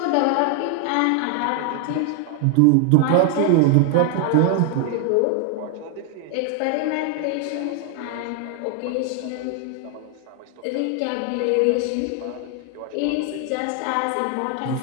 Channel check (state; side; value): different; both; correlation 0.00